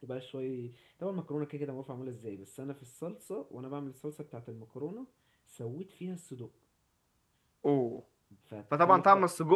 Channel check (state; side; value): identical; both; correlation 1.00